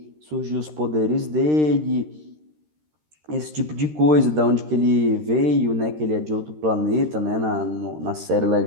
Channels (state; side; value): late; left; 13 ms